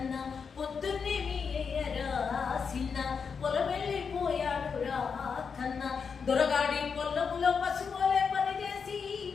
పొద్దున్నే మీయరా సిన్న పొలమెళ్ళిపోయాడు రా కన్నా దొరగాడి పొల్లములో పసుపోలే పనిచేసి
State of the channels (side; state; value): right; quieter; 5.9 dB